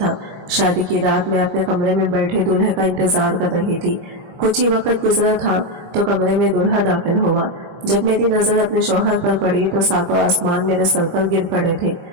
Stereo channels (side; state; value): left; late; 25 ms